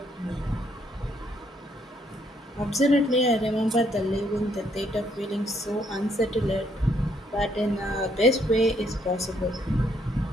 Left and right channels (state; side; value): normal; both; correlation 0.70